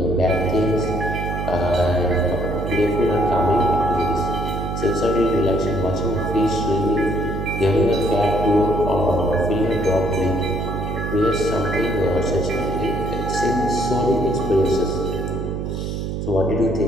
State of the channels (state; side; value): noise; right; hum, 3 dB below the sound